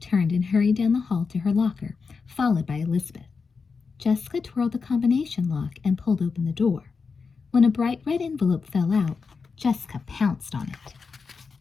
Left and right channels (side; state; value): right; quieter; 5.0 dB